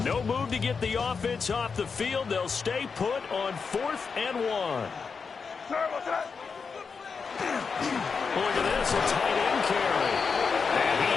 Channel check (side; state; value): right; quieter; 5.4 dB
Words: no move to get the offense off the field. They'll stay put on 4th and 1. Look at this, a tight end carry. And he